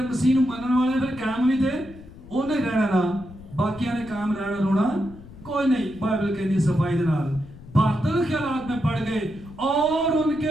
मसीह नूं मनन वाले फिर कायम भी थे उन्हें रहना ना, बाकियां ने कायम रहना रोना कोई नहीं। बाइबल कहती सफाई दे नाल बातिल ख्यालात में पड़ गए और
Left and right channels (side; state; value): left; noise; rumble, 18 dB below the sound